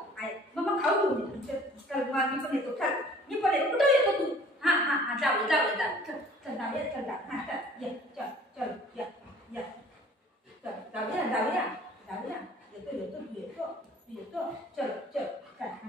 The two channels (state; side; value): normal; both; correlation 0.51